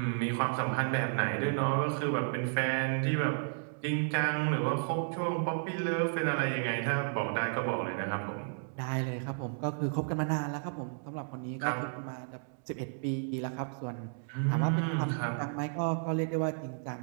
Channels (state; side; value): silent; left; digital silence